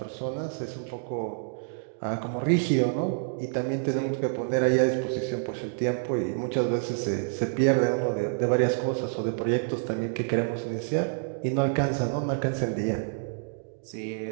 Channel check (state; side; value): silent; left; digital silence